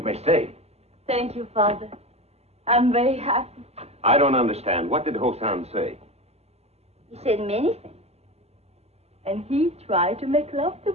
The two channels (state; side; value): late; left; 0.30 ms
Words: may stay. Thank you, Father. I'm very happy. I don't understand. What did Hosan say? He said many things. And he tried to make love to